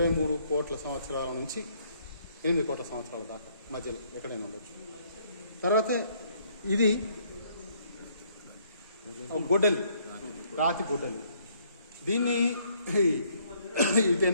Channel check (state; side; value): inverted; both; correlation -0.67